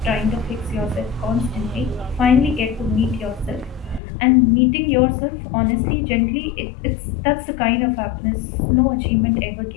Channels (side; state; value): right; drops out; at 4.0 s